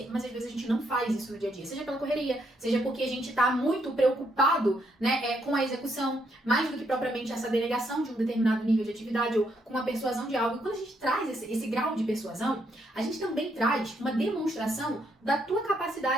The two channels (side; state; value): both; normal; correlation 0.75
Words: Mas às vezes a gente não faz isso no dia a dia, seja pela correria, seja porque a gente tá muito preocupado, né, com a execução, mais do que propriamente essa delegação de um determinado nível de atividade ou com a persuasão de algo. E quando a gente traz esse grau de persuasão, a gente também traz uma demonstração da tua